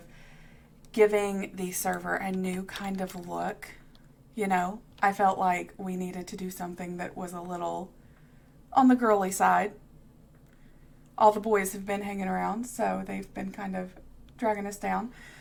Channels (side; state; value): both; identical; correlation 1.00